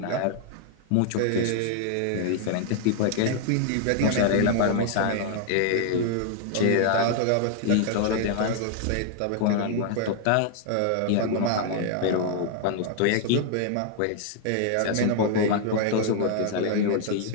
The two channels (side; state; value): both; different; correlation 0.00